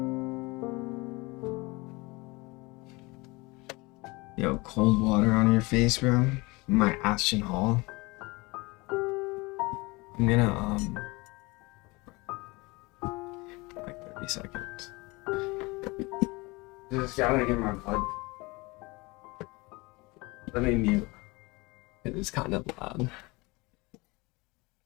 Yo, cold water on your face, bro. My Ashton Hall. I'm gonna, like 30 seconds. Just gotta get my blood. Let me mute. It is kind of loud.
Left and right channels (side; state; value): right; quieter; 24.7 dB